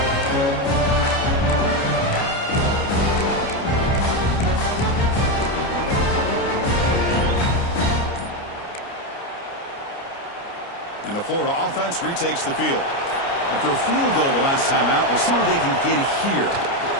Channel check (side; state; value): right; late; 29 ms